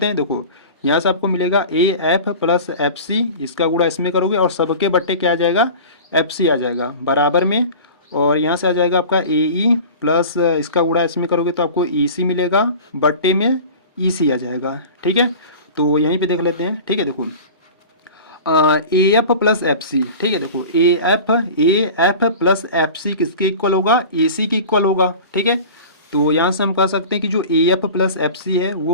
हैं। देखो यहाँ से आपको मिलेगा A F plus F C, इसका गुणा इसमें करोगे और सबके बट्टे क्या आ जाएगा, एफ सी आ जाएगा बराबर में, और यहाँ से आ जाएगा आपका ए ई प्लस इसका गुणा इसमें करोगे तो आपको ई सी मिलेगा, बट्टे में ई सी आ जाएगा, ठीक है। तो यहीं पे देख लेते हैं, ठीक है। देखो A F plus F C, ठीक है, देखो A F plus F C किसके इक्वल होगा, ए सी के इक्वल होगा, ठीक है। तो यहाँ से हम कह सकते हैं कि जो A F plus F C है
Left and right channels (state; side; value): inverted; both; correlation -0.37